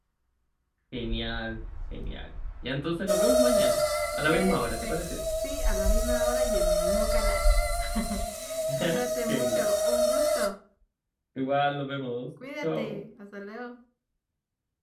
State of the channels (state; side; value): identical; both; correlation 1.00